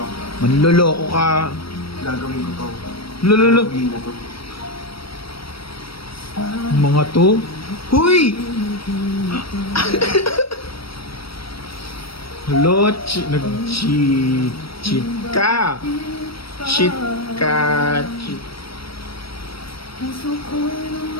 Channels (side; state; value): right; late; 0.75 ms